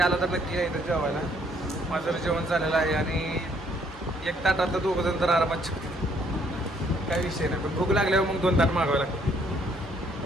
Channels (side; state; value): both; normal; correlation 0.66